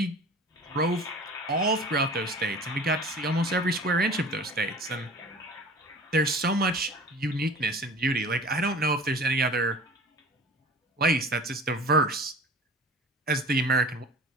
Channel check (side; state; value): both; normal; correlation 0.41